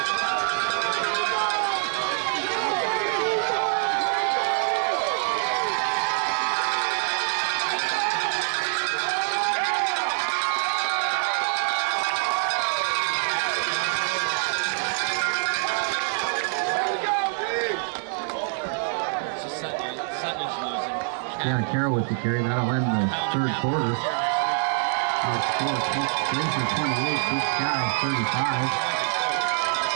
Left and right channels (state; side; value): silent; left; 62 dB below the other